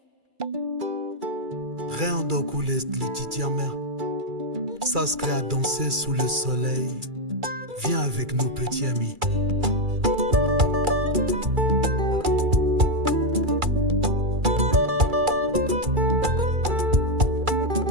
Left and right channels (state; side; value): late; left; 2.3 ms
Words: Reondoku Lititiamer, ça se crée à danser sous le soleil. Viens avec nous, petit ami.